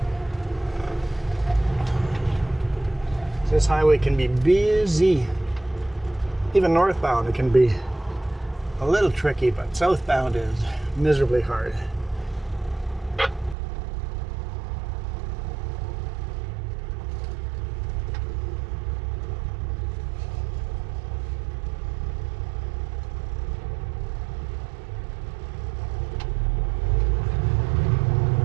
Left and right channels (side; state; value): left; drops out; at 13.6 s